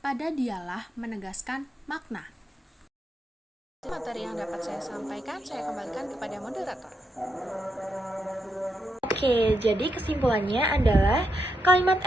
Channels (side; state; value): both; normal; correlation 0.82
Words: dialah menegaskan makna. Materi yang dapat saya sampaikan, saya kembalikan kepada moderator. Oke, jadi kesimpulannya adalah kalimat